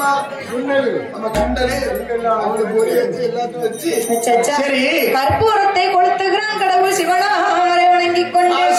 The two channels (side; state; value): both; identical; correlation 1.00